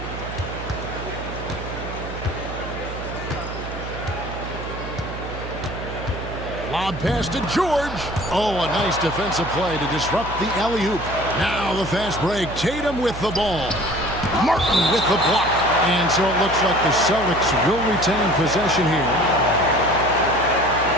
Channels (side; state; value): right; noise; hum, 9 dB below the sound